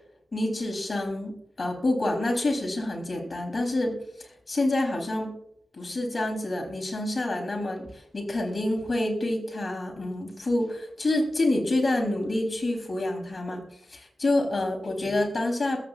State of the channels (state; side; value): normal; both; correlation 0.94